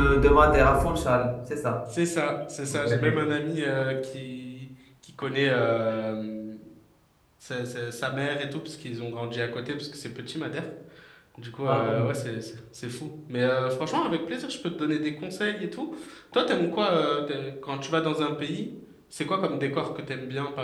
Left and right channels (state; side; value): identical; both; correlation 1.00